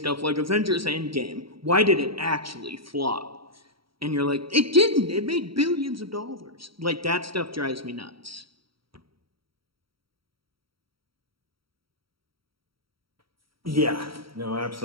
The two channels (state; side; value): late; left; 0.74 ms